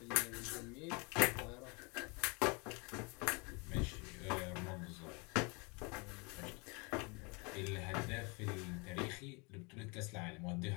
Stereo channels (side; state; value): right; quieter; 30.5 dB